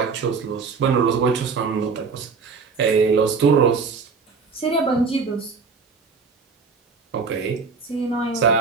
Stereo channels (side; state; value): left; quieter; 5.1 dB